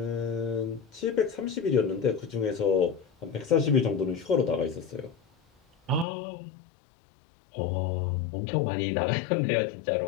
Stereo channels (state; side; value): drops out; right; at 6.1 s